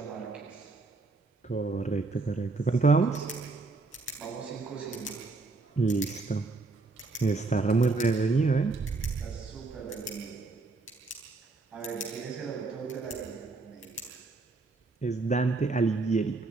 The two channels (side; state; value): left; quieter; 3.7 dB